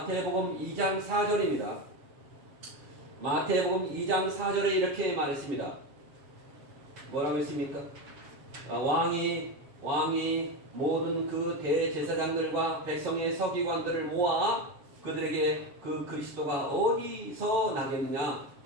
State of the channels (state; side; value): late; left; 7.3 ms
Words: 2장 4절입니다. 마태복음 2장 4절에 이렇게 말했습니다. 뭐라고 했습니까? 왕이 모든 그 대제사장들과 백성의 서기관들을 모아 그들에게 그 그리스도가 어디서 나겠느냐